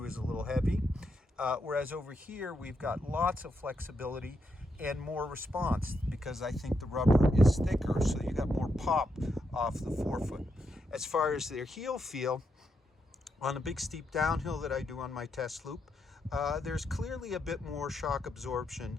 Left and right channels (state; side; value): normal; both; correlation 0.81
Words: is a little heavy. Whereas over here we've got lots of flexibility and more response, because I think the rubber is thicker, so you got more pop off the forefoot. As far as their heel feel, on a big steep downhill that I do on my test loop, there's clearly a bit more shock absorption